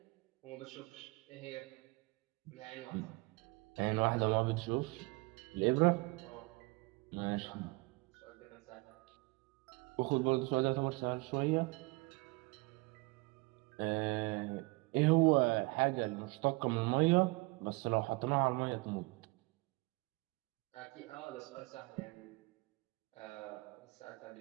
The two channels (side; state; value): left; quieter; 25.7 dB